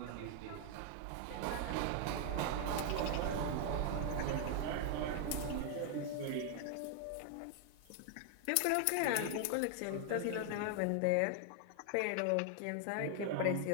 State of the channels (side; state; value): both; different; correlation 0.00